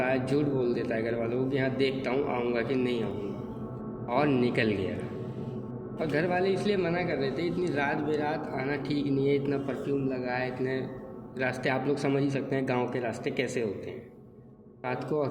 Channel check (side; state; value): both; identical; correlation 1.00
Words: है, झूठ बोल देता है घर वालों को कि हाँ देखता हूँ आऊँगा कि नहीं आऊँगा, और निकल गया। और घर वाले इसलिए मना कर रहे थे, इतनी रात बेरात आना ठीक नहीं है, इतना परफ्यूम लगा है, इतने रास्ते आप लोग समझ ही सकते हैं गांव के रास्ते कैसे होते हैं। रात को